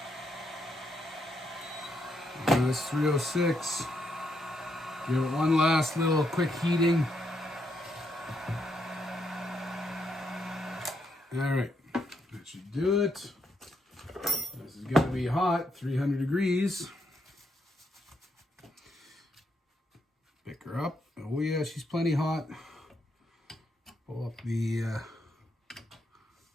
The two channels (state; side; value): normal; both; correlation 0.77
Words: That's 306. Give it one last little quick heating. All right, that should do it. This is going to be hot, 300 degrees. Pick her up. Oh yeah, she's plenty hot. Pull up the,